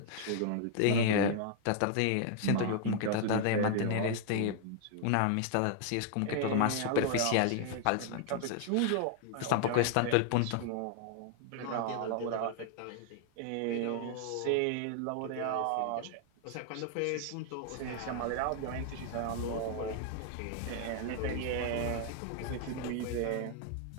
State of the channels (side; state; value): both; different; correlation 0.00